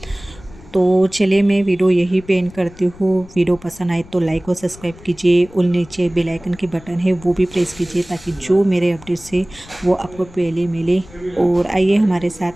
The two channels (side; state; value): left; noise; rumble, 21 dB below the sound